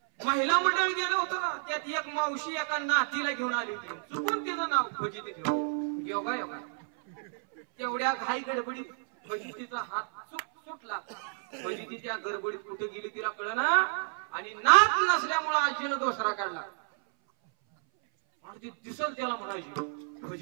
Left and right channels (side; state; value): left; silent; 57 dB below the other